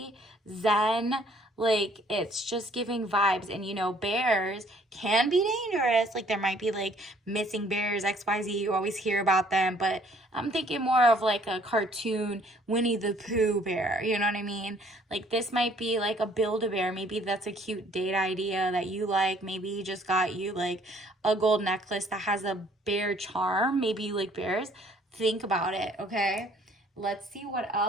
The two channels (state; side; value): normal; both; correlation 0.60